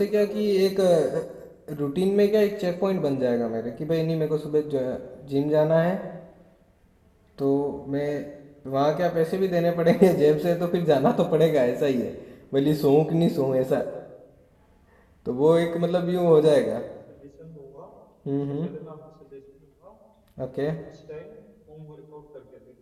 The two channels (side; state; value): both; identical; correlation 1.00